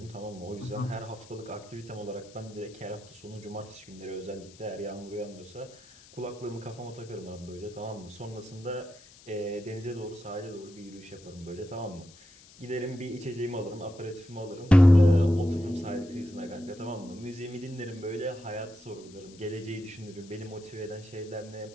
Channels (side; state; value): left; noise; hiss, 22 dB below the sound